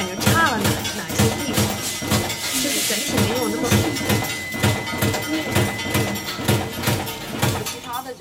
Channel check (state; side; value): identical; both; correlation 1.00